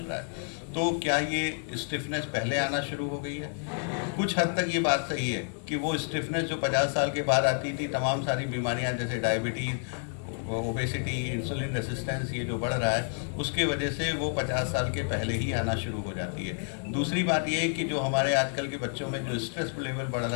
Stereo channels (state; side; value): silent; right; 56 dB below the other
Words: रहा है। तो क्या ये स्टिफनेस पहले आना शुरू हो गई है? कुछ हद तक ये बात सही है कि वो स्टिफनेस जो 50 साल के बाद आती थी, तमाम सारी बीमारियां जैसे डायबिटीज़, ओबेसिटी, इंसुलिन रेसिस्टेंस, ये जो बढ़ रहा है उसके वजह से वो 50 साल के पहले ही आना शुरू हो जाती है। दूसरी बात ये है कि जो हमारे आजकल के बच्चों में जो स्ट्रेस लेवल बढ़